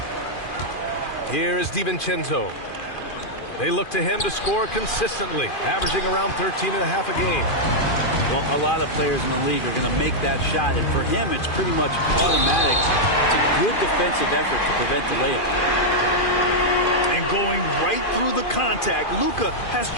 Here is DiVincenzo. They look to him to score consistently, averaging around 13.5 a game. Well, a lot of players in the league are going to make that shot, and for him, it's pretty much automatic. It's a good defensive effort to prevent the layup. And going right through the contact, Luka has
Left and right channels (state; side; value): late; right; 2.4 ms